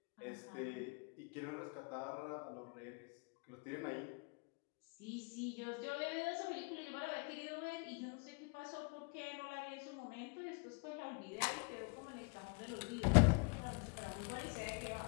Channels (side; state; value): right; quieter; 34.2 dB